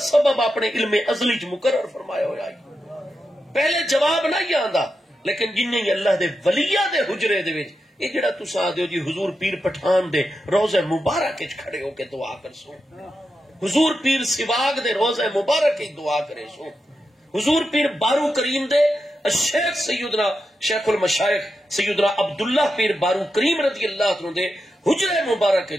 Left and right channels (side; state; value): both; normal; correlation 0.88